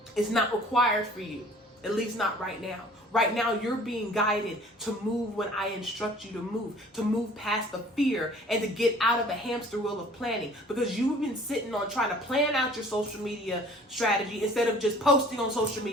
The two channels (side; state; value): both; normal; correlation 0.51